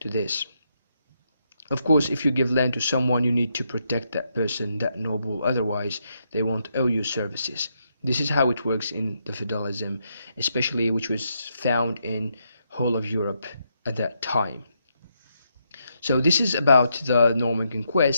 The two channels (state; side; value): inverted; both; correlation -0.79